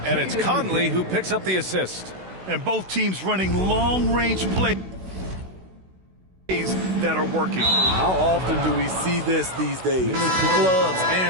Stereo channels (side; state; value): left; late; 16 ms